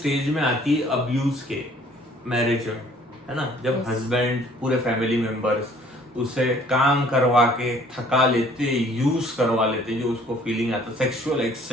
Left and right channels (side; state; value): both; normal; correlation 0.57